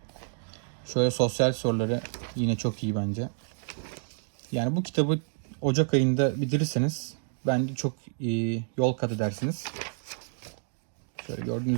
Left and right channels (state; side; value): silent; left; digital silence